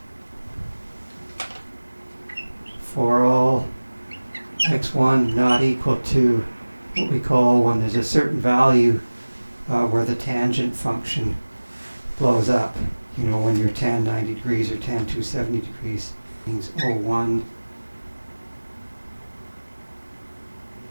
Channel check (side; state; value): both; inverted; correlation -1.00